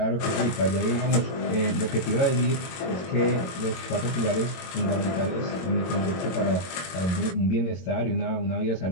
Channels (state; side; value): late; right; 22 ms